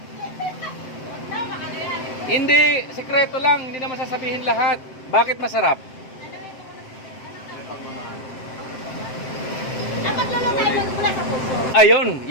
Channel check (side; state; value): right; late; 7.7 ms